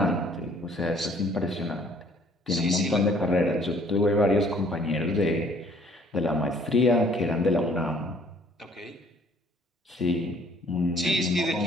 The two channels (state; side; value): normal; both; correlation 0.59